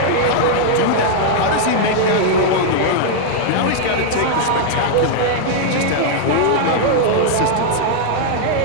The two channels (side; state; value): both; different; correlation -0.01